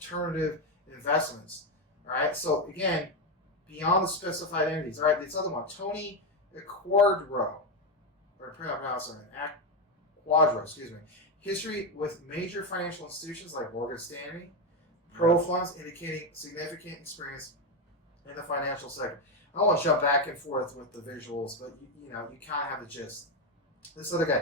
investments? All right, so again, beyond the specified entities. All right, this other one, Tony Quadro, or pronounce it, Quadro, excuse me. History with major financial institutions like Morgan Stanley, Pro funds, indicating significant experience in the financial sector. I don't want to jump back and forth with the visuals, but you kind of have the gist. This other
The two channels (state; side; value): normal; both; correlation 0.09